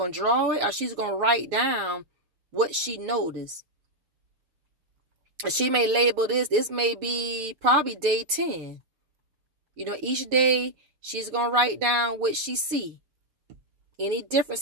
to draw it or she's going to write down what she noticed. She may label this. This may be probably day 10. You know, each day she's going to write down what she see. Any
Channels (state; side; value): late; left; 6.6 ms